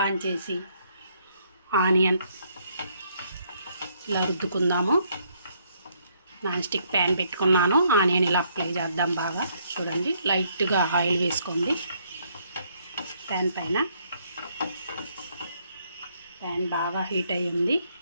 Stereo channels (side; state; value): both; inverted; correlation -0.70